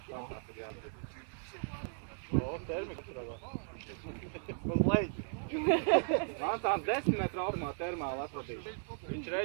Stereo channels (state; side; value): silent; left; digital silence